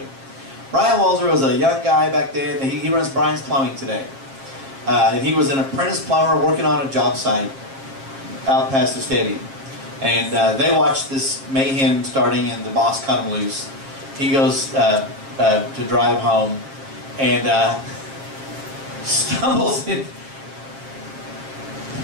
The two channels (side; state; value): left; late; 7.4 ms